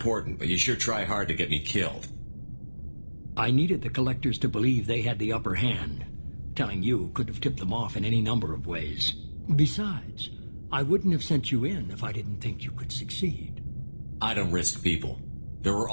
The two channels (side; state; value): both; inverted; correlation -1.00